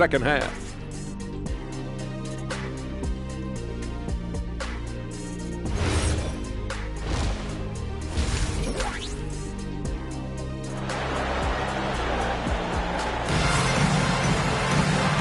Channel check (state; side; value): identical; both; correlation 1.00